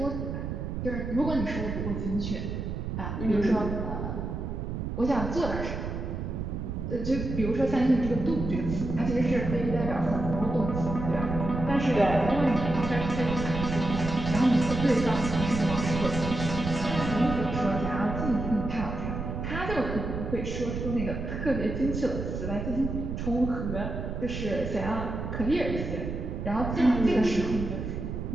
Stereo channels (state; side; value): noise; right; rumble, 4 dB below the sound